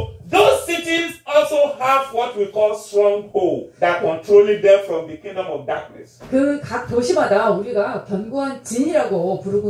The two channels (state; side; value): identical; both; correlation 1.00